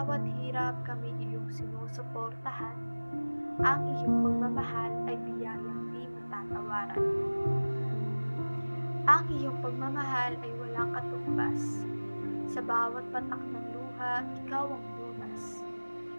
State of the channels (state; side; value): inverted; both; correlation -1.00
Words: hirap kami iyong sinusuportahan, ang iyong pagmamahal ay biyayang di matatawaran. Ang iyong pagmamahal ay walang katumbas. Sa bawat patak ng luha, ikaw ang lunas.